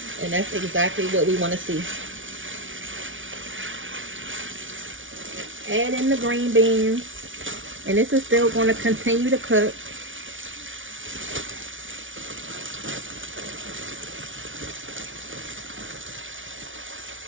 And that's exactly what we want to see. Add in the green beans. And this is still going to continue to cook.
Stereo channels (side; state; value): left; late; 0.57 ms